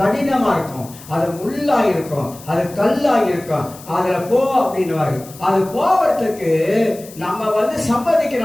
இருக்கும், அது முள்ளா இருக்கும், அது கல்லா இருக்கும். அதுல போ அப்படின்னுவாரு. அது போவதுக்கு நம்ம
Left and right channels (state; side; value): noise; left; hiss, 19 dB below the sound